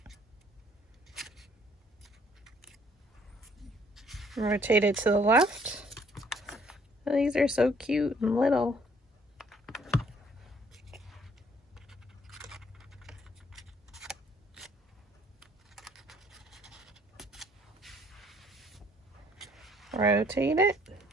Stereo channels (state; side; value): normal; both; correlation 0.62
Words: Rotate it to the left. Oh, these are so cute and little. Rotate it.